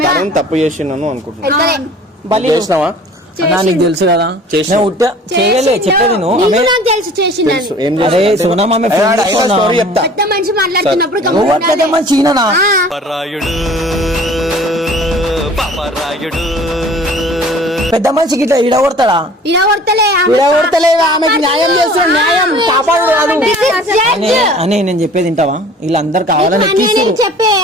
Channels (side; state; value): both; normal; correlation 0.48